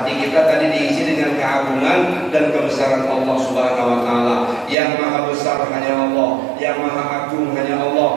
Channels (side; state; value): left; drops out; at 4.8 s